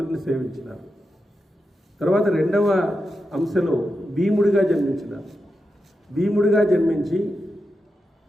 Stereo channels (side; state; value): both; normal; correlation 0.88